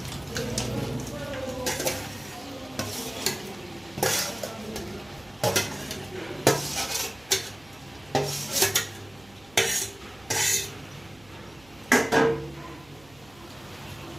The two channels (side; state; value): right; noise; hum, 25 dB below the sound